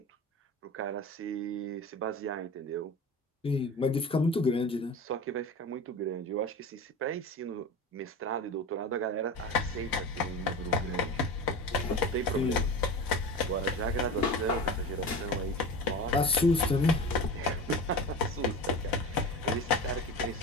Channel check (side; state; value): both; normal; correlation 0.30